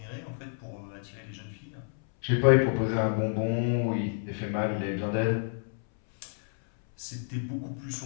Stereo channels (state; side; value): silent; right; 58 dB below the other